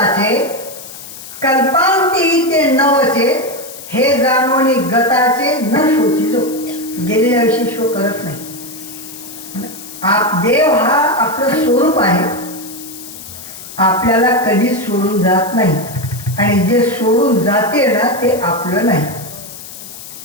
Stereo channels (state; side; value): noise; left; hiss, 14 dB below the sound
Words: कल्पांती ते नवचे हे जाणवणी गताचे न शोचितो. गेलेल्या विषयी शो करत नाही. देव हा आपलं स्वरूप आहे, आपल्याला कधीच सोडून जात नाही. आणि जे सोडून जाते ना ते आपलं नाही.